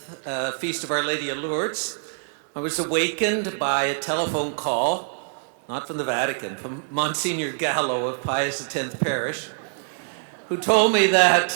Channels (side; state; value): left; silent; 62 dB below the other